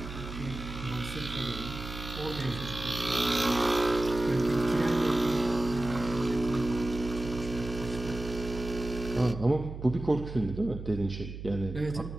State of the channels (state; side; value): noise; right; hum, 9 dB below the sound